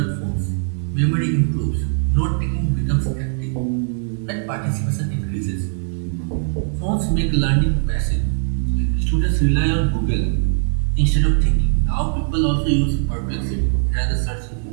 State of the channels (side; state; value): left; silent; digital silence